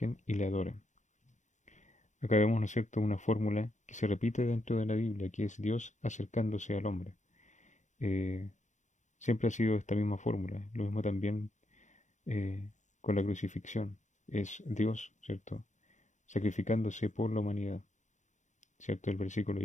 y le adoren. Acá vemos, ¿no es cierto?, una fórmula que se repite dentro de la Biblia, que es Dios acercándose al hombre. Eh, Siempre ha sido esta misma fórmula. Lo mismo también eh, con la crucifixión. Es Dios, ¿cierto?, sacrificándose por la humanidad, ¿cierto? El versículo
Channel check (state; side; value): late; right; 0.35 ms